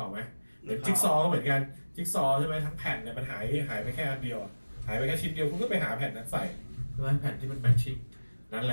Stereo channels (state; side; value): inverted; both; correlation -1.00